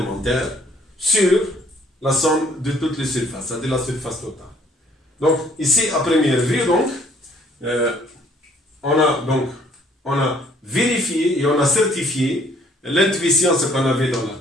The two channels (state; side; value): normal; both; correlation 0.61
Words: sur la somme de toutes les surfaces, c'est-à-dire la surface totale. Donc, ici, à première vue, donc, on a vérifié et on a certifié l'intuition, ce qu'on avait dans la